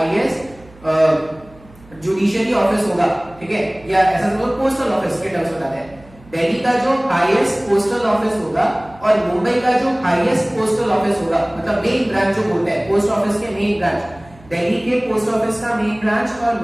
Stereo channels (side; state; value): right; noise; hum, 25 dB below the sound